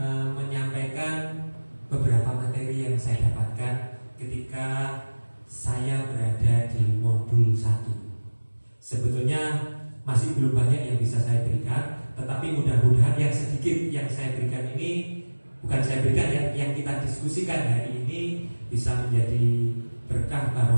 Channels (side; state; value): both; inverted; correlation -1.00